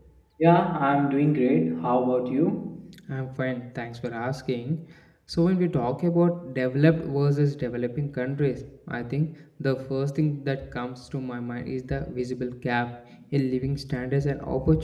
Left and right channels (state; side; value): identical; both; correlation 1.00